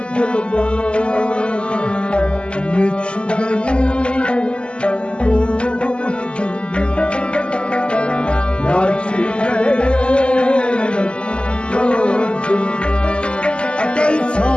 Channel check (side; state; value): right; late; 0.052 ms